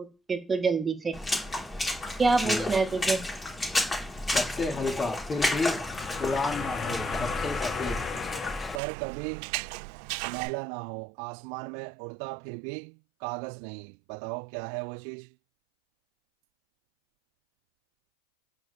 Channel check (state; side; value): drops out; left; at 8.8 s